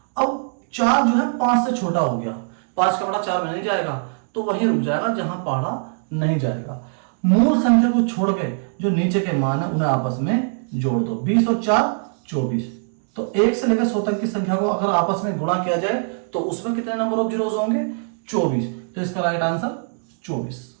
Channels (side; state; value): left; silent; 64 dB below the other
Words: अब 4 जो है 5 से छोटा हो गया। 5 का बड़ा 4 में नहीं जाएगा तो वहीं रुक जाएगा जहां पढ़ा नहीं जाएगा। मूल संख्या को छोड़ के जो नीचे के मान है उन्हें आपस में जोड़ दो। 20 और 4 24। तो 1 से लेकर 100 तक की संख्या को अगर आपस में गुणा किया जाए तो उसमें कितने नंबर ऑफ जीरोस होंगे? 24। तो इसका राइट आंसर 24।